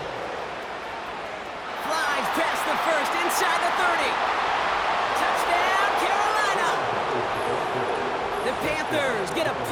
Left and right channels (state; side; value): identical; both; correlation 1.00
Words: Flies past the first, inside the 30. Touchdown, Carolina! The Panthers get a